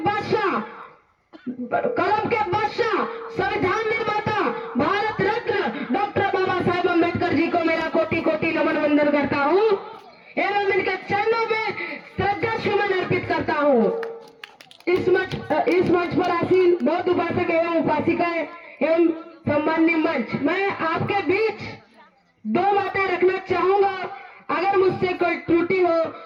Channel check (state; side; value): identical; both; correlation 1.00